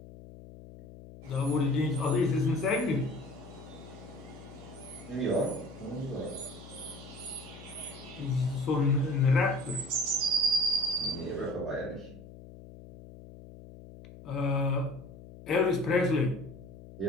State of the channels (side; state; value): left; noise; hum, 17 dB below the sound